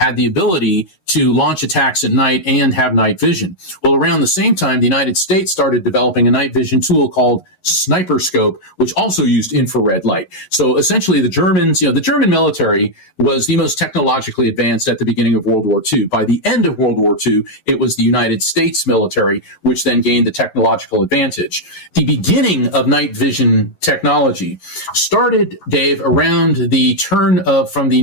the ability to launch attacks at night and have night vision. Well, around the same time, the United States started developing a night vision tool called sniper scope, which also used infrared light. So essentially the Germans, the German military was the most technologically advanced at the beginning of World War II. By the end of World War II, it was the United States military, which then gained the technological advantage. The beginning of night vision technology started, Dave, around the turn of from the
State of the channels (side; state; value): right; late; 11 ms